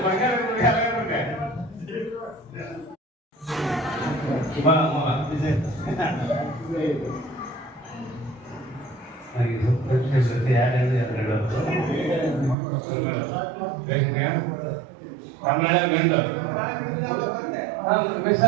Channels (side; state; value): left; drops out; at 12.6 s